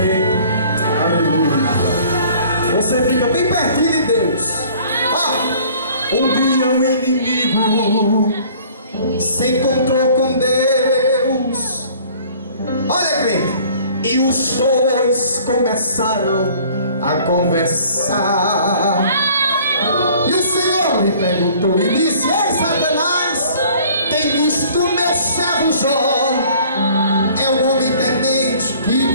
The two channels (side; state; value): both; inverted; correlation -0.52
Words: Aleluia. Você fica bem pertinho de Deus. Um dia o inimigo se encontrou com Deus. Olha, crente. E os dois começaram a conversar. E o Senhor lhe perguntou e disse: ei, Satanás, tem visto meu servo Jó? É um homem temente que